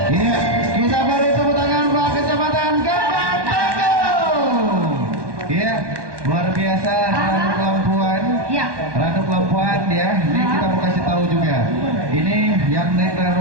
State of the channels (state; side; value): late; left; 1.2 ms